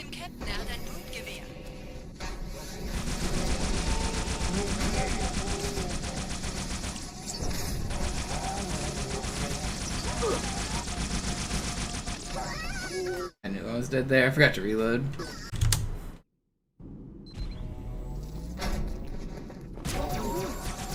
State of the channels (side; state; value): both; identical; correlation 1.00